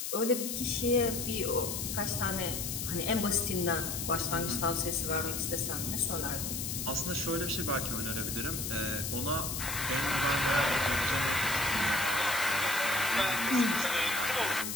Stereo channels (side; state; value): left; noise; hiss, 3 dB below the sound